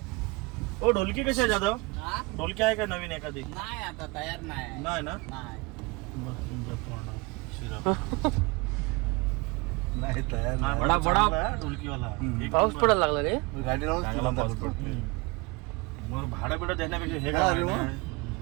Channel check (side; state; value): left; quieter; 25.7 dB